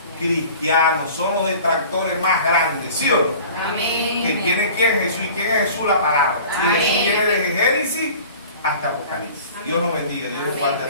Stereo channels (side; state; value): both; inverted; correlation -0.44